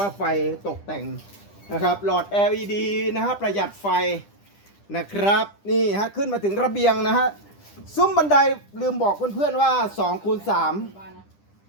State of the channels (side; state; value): right; late; 10 ms